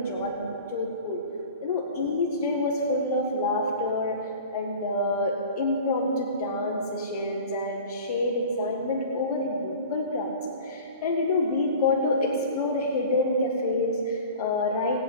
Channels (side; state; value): both; inverted; correlation -0.39